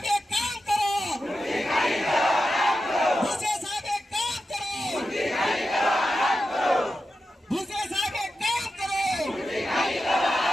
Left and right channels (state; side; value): normal; both; correlation 0.90